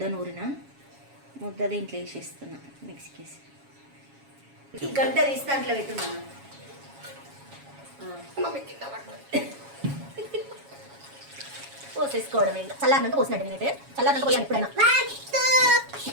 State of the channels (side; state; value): left; late; 7.2 ms